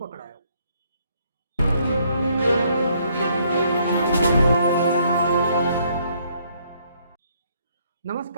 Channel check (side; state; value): both; inverted; correlation -0.68